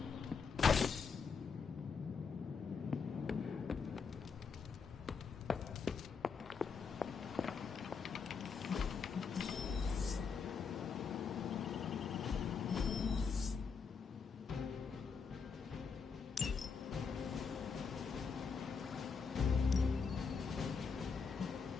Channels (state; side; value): quieter; right; 5.6 dB